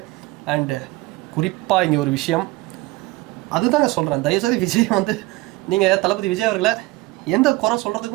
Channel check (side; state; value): left; quieter; 20.2 dB